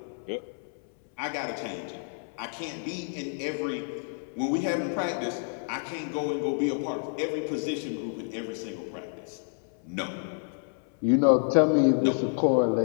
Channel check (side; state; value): right; silent; 59 dB below the other